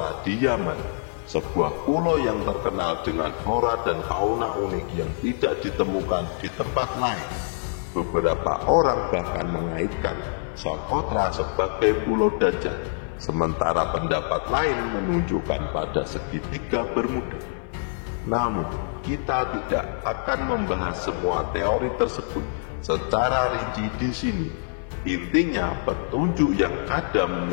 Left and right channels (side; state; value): right; silent; 60 dB below the other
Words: di Yaman, sebuah pulau yang terkenal dengan flora dan fauna unik yang tidak ditemukan di tempat lain. Beberapa orang bahkan mengaitkan Socotra sebagai Pulau Dajjal, sementara pendapat lain menunjukkan pada segitiga Bermuda. Namun, kita tidak akan membahas semua teori tersebut secara rinci di sini. Intinya, petunjuk yang ada